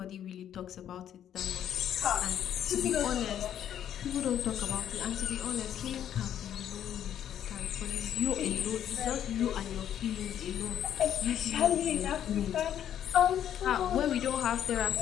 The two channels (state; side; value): quieter; right; 10.2 dB